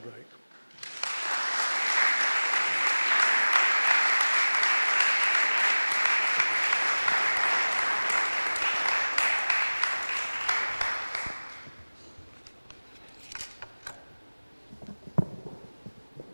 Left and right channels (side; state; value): both; inverted; correlation -1.00